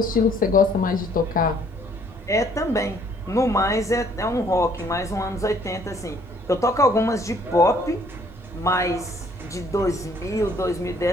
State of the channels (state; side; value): normal; both; correlation 0.62